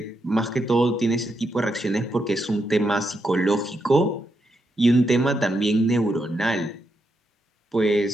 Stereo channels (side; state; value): both; normal; correlation 0.82